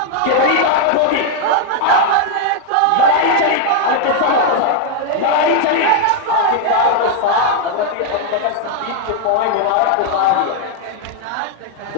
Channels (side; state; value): both; different; correlation 0.00